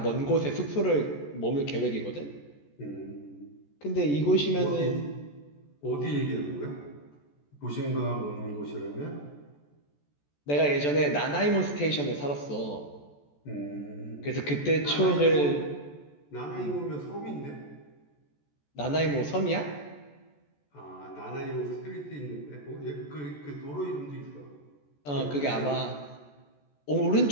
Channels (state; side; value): late; right; 14 ms